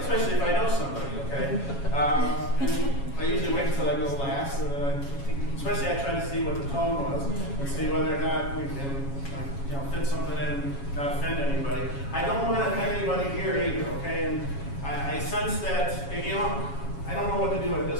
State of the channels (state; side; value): late; right; 7.2 ms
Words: if I know somebody, okay? And I usually wait until I go last, and then especially I try to see what the tone was and see whether or not we can fit something in and not offend anybody. I don't want to offend anybody here either, okay? And I sense that, I don't know what to do at